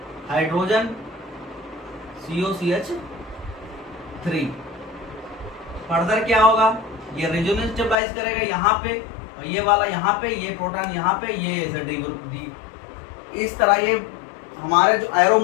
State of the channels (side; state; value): right; drops out; at 8.0 s